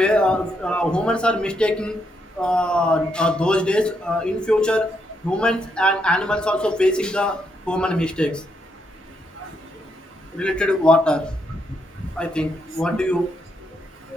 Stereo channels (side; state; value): both; normal; correlation 0.78